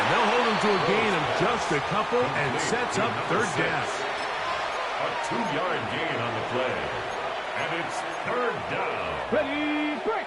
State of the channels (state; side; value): identical; both; correlation 1.00